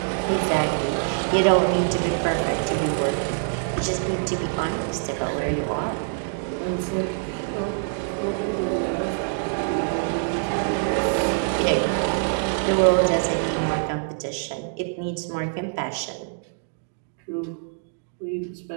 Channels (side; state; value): left; silent; digital silence